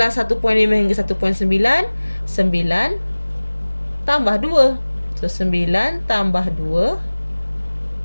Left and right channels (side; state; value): both; inverted; correlation -1.00